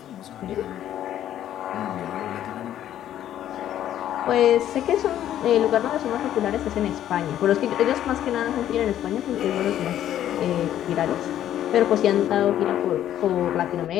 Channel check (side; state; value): right; quieter; 11.5 dB